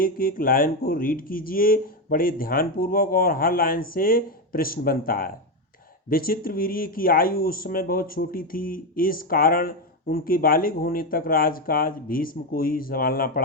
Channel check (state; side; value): normal; both; correlation 0.10